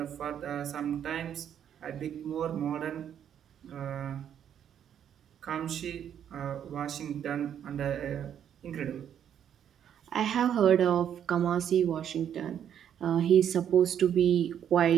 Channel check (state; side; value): quieter; left; 9.3 dB